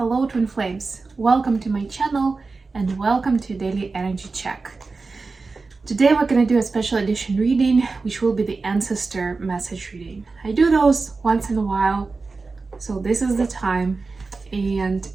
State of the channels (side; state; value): left; quieter; 4.0 dB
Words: Twin Flames, welcome to my channel and welcome to Daily Energy Check. Today we're going to do a special edition reading, which will be the ancestor message reading. I do those once in a while, so this is the time. And